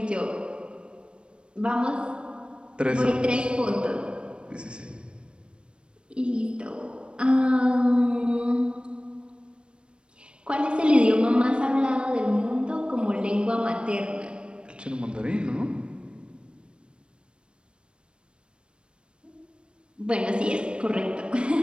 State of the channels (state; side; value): late; left; 0.056 ms